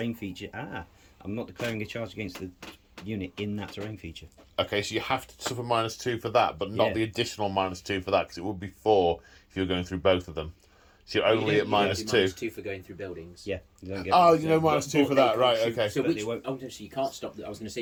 feature. I'm not declaring a charge against the unit in that terrain feature. Okay, so you have to suffer -2 for that, but not Yeah. the additional -2 for that, because it would be 4 if you're going through both of them. So you're only at -2. -2 for going through buildings. Yeah. You don't get Oh, you know -2 for that, right? Okay. So But which? they won't- Oh, no, so you can't stop. I was going to say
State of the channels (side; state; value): both; identical; correlation 1.00